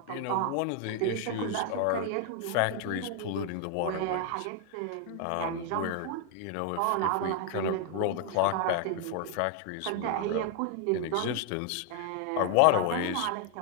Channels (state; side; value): different; both; correlation 0.00